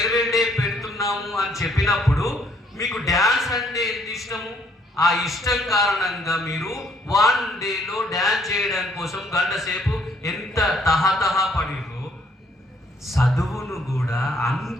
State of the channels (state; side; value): normal; both; correlation 0.65